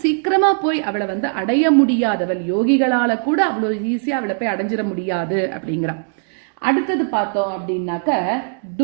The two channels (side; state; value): left; silent; digital silence